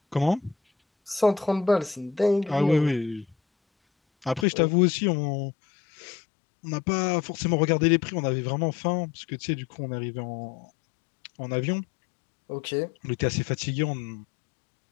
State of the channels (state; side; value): drops out; right; at 4.5 s